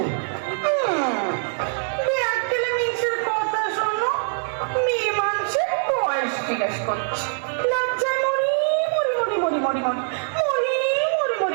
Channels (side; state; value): left; silent; 63 dB below the other